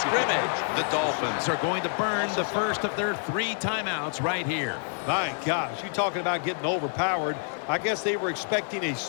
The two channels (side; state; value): right; silent; 60 dB below the other